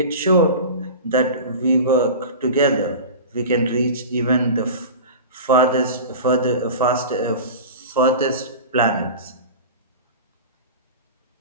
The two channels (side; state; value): both; inverted; correlation -0.32